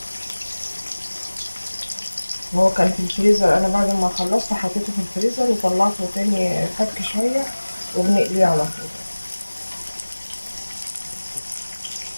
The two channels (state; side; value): inverted; both; correlation -1.00